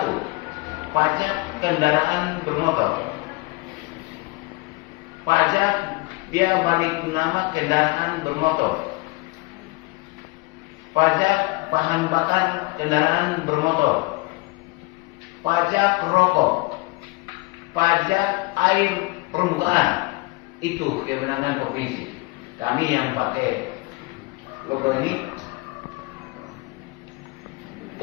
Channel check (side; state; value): right; quieter; 25.0 dB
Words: pajak kendaraan bermotor. Pajak dia balik nama kendaraan bermotor. Pajak bahan bakar kendaraan bermotor. Pajak rokok. Pajak air permukaan. Itu kewenangan provinsi. Kami yang pakai logo ini